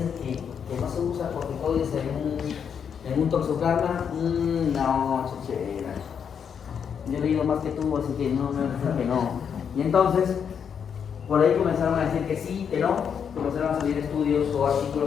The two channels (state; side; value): quieter; right; 7.4 dB